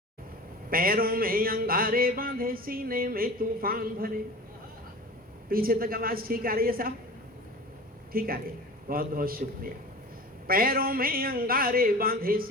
पैरों में अंगारे बांधे, सीने में तूफान भरे। पीछे तक आवाज ठीक आ रही है साहब? ठीक आ रही है, बहुत बहुत शुक्रिया। पैरों में अंगारे बांधे,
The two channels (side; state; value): both; normal; correlation 0.36